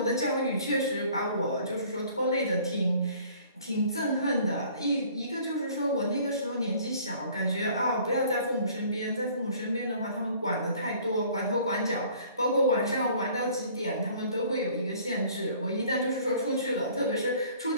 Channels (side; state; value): both; inverted; correlation -0.53